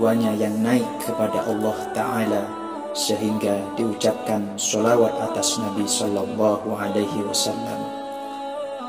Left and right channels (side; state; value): both; identical; correlation 1.00